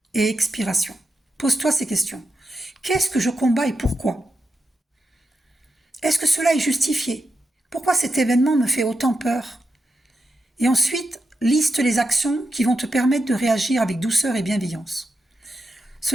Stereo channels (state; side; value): normal; both; correlation 0.86